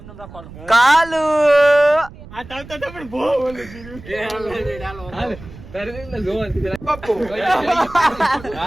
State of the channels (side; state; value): right; noise; rumble, 17 dB below the sound